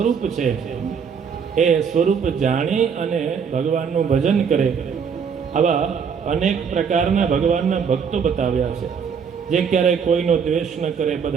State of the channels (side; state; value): left; quieter; 6.6 dB